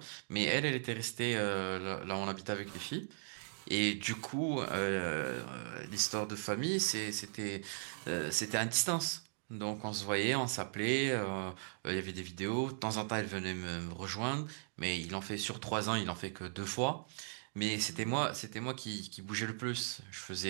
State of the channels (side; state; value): left; silent; digital silence